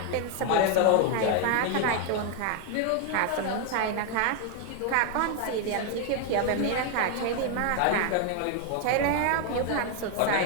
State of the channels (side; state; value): both; different; correlation 0.01